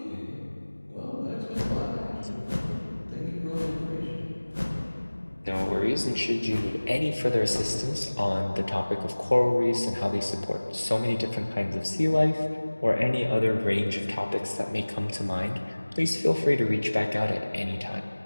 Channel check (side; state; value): both; inverted; correlation -1.00